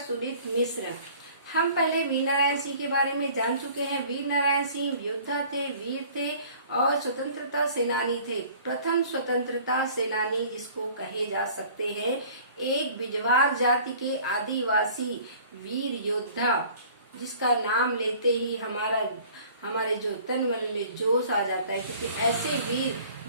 मिश्र। हम पहले वीर नारायण सिंह के बारे में जान चुके हैं। वीर नारायण सिंह योद्धा थे, वीर थे और स्वतंत्रता सेनानी थे। प्रथम स्वतंत्रता सेनानी जिसको कहे जा सकते हैं, एक बिजवार जाति के आदिवासी वीर योद्धा, जिसका नाम लेते ही हमारे जो तन मन में जोश आ जाता है, क्योंकि ऐसे वीर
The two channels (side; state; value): both; inverted; correlation -0.50